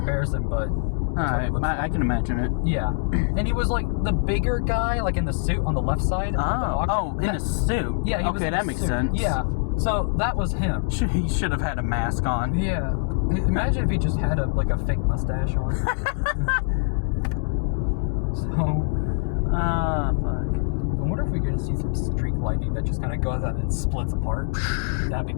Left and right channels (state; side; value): silent; right; 63 dB below the other